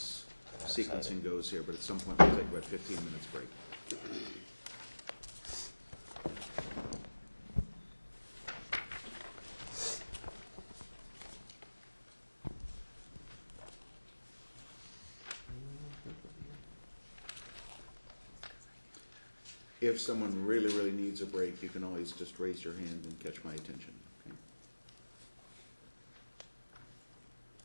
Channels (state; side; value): inverted; both; correlation -1.00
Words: sequencing goes here, but at some point we'll take about 15 minutes break. If someone really, really needs a break, you can always just raise your hand and catch my attention, okay?